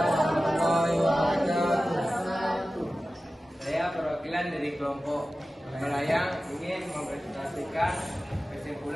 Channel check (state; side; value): normal; both; correlation 0.95